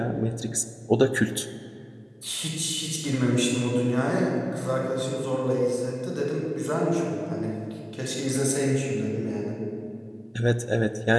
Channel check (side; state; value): both; identical; correlation 1.00